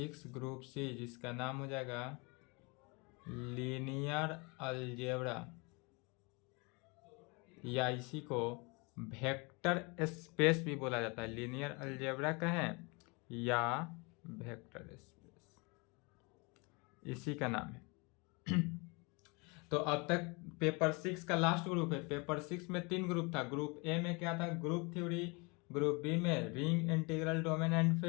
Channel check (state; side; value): quieter; right; 29.3 dB